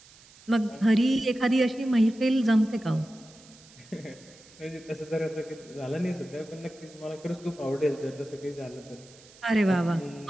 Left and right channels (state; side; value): noise; right; hiss, 24 dB below the sound